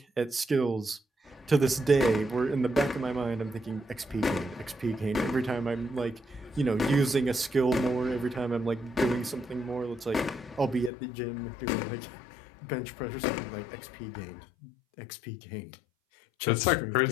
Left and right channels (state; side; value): drops out; right; at 10.9 s